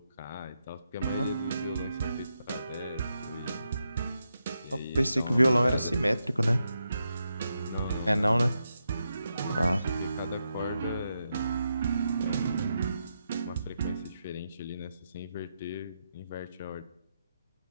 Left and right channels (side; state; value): both; inverted; correlation -0.85